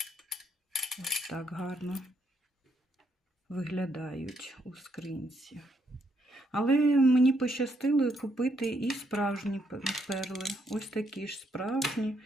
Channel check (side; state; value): both; normal; correlation 0.74